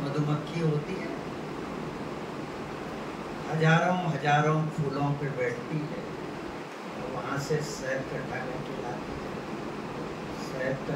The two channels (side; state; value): both; identical; correlation 1.00